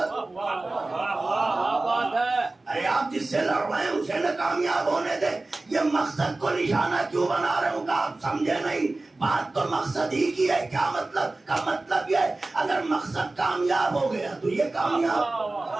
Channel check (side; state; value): left; quieter; 3.1 dB